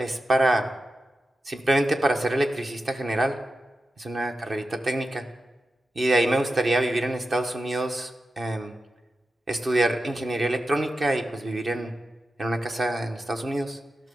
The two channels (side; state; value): both; normal; correlation 0.91